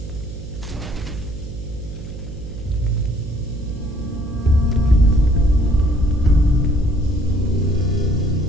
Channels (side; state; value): right; noise; hum, 11 dB below the sound